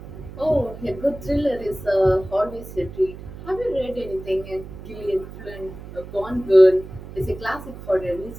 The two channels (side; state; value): right; noise; hum, 14 dB below the sound